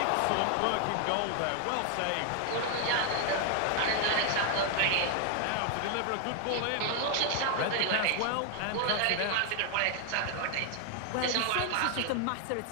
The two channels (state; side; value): different; both; correlation 0.00